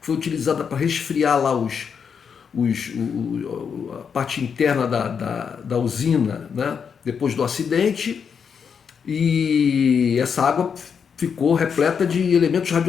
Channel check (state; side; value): quieter; right; 6.7 dB